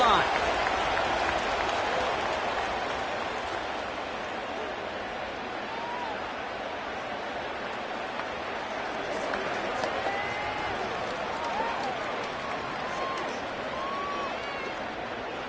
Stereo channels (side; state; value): both; identical; correlation 1.00